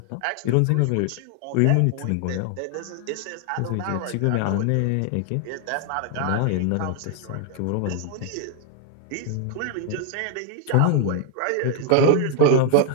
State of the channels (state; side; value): different; both; correlation 0.00